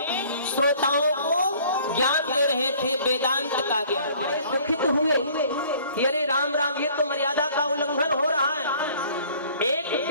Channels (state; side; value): inverted; both; correlation -0.54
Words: श्रोताओं को ज्ञान दे रहे थे, वेदांत का ज्ञान। बड़े दुखित हुए कि अरे राम राम, ये तो मर्यादा का उल्लंघन हो रहा है। एक